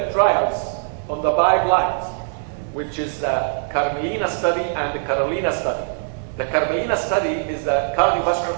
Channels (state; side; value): silent; left; digital silence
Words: trials on the guidelines, which is the Carmelina study and the Carolina study. The Carmelina study is the